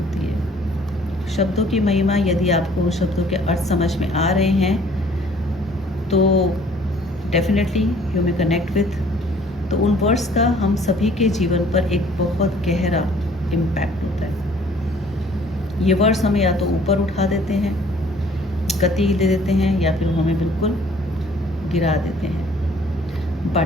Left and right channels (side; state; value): both; normal; correlation 0.56